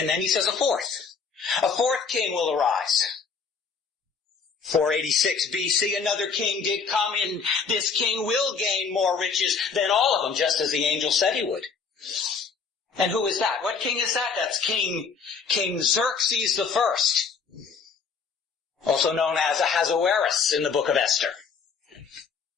then he says a fourth king will arise. 486 BC, another king did come, and this king will gain more riches than all of them, just as the angel said he would. And who is that? What king is that? That's King Xerxes the First, also known as Ahasuerus in the book of Esther.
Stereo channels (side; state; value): right; quieter; 5.5 dB